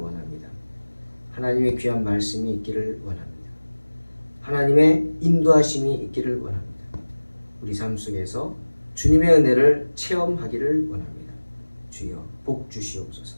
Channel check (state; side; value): inverted; both; correlation -1.00